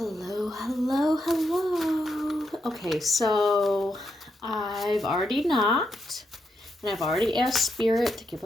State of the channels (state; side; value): normal; both; correlation 0.82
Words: hello, hello. Okay, so I've already knocked and I've already asked Spirit to give